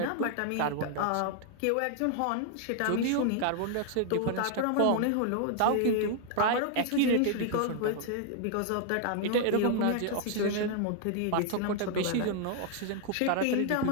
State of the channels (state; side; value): different; both; correlation 0.00